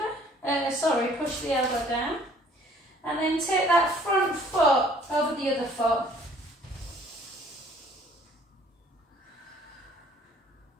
push the elbow down. And then take that front foot over the other foot.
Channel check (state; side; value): normal; both; correlation 0.57